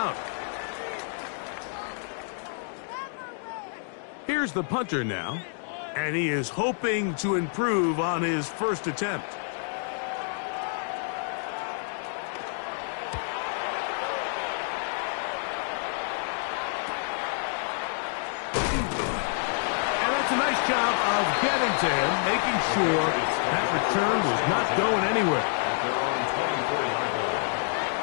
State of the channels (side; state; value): right; silent; 59 dB below the other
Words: Here's the punter now, and he is hoping to improve on his first attempt. And that's a nice job of getting to him, making sure that return was not going anywhere.